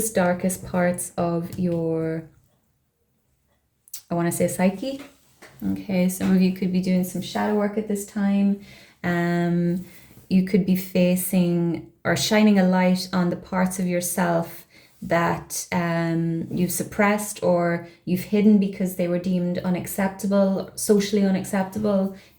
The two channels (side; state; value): both; identical; correlation 1.00